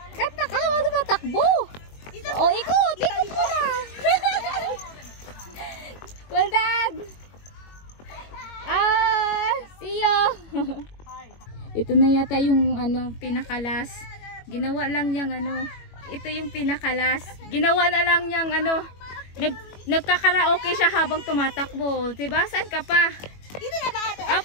Katakawa na ba takbo? O, ikot! Ikot mo na! Well done! See you! Ito na yata yung pinakalas. Ginawa lang niyang ito yung pinakalas. Ginawa na lang niyang nagkakaraoke siya habang tumatakbo. Diba? Saan ka pa? Dito na ba, ate?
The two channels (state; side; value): late; right; 21 ms